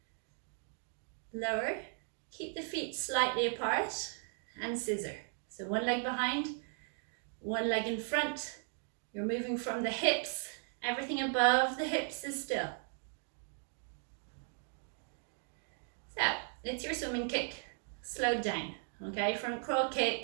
Lower. Keep the feet slightly apart and scissor. So one leg behind, one leg in front. You're moving from the hips. Everything above the hips is still. So it's your swimming kick, slowed down. Okay, front crawl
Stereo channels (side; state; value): left; silent; 53 dB below the other